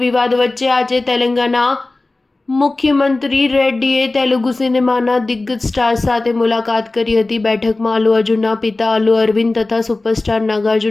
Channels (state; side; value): quieter; right; 3.1 dB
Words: વિવાદ વચ્ચે આજે તેલંગાના મુખ્યમંત્રી રેડ્ડીએ તેલુગુ સિનેમાના દિગ્ગજ સ્ટાર્સ સાથે મુલાકાત કરી હતી. બેઠકમાં અલ્લુ અર્જુનના પિતા અલ્લુ અરવિંદ તથા સુપરસ્ટાર